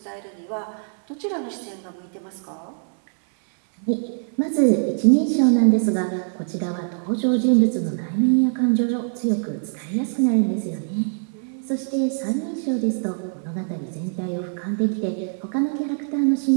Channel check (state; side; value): silent; left; digital silence